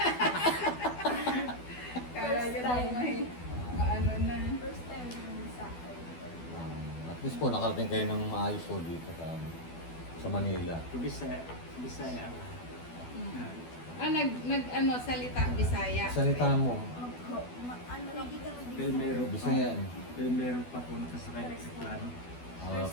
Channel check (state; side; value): late; right; 12 ms